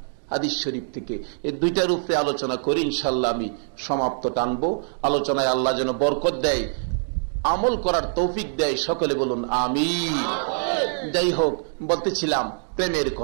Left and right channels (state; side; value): silent; left; digital silence